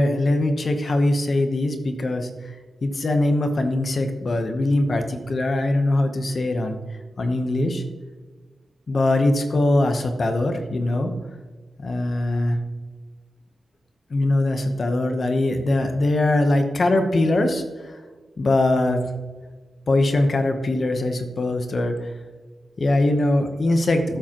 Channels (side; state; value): both; normal; correlation 0.93